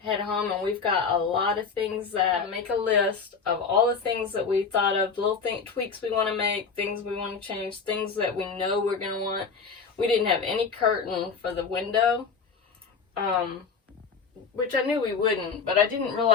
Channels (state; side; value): quieter; right; 5.4 dB